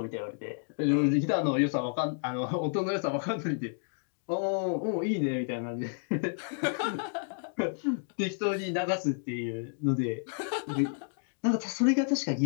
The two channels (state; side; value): silent; right; digital silence